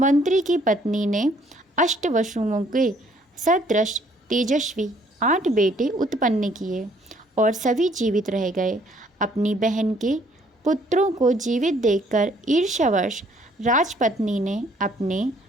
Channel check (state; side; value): normal; both; correlation 0.63